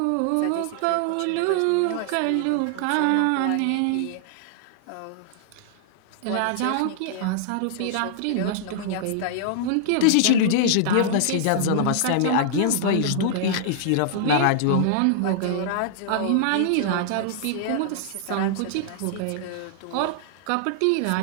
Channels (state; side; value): different; both; correlation -0.01